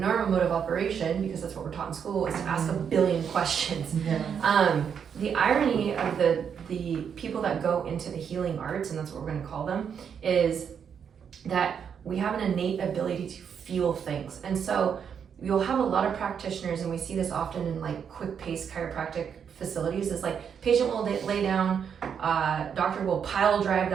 mode of operation, because that's what we're taught in school, is to ask a billion questions. The irony of the people that go into the healing arts, and that's what we're going to call them, is that we have an innate ability to feel things. And so you'll have a lot of practitioners, and we see this often in like quick pace chiropractic facilities, is like patient will lay down, doctor will pile drive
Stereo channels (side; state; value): left; quieter; 7.4 dB